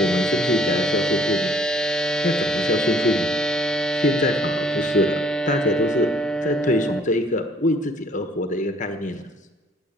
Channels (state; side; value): normal; both; correlation 0.59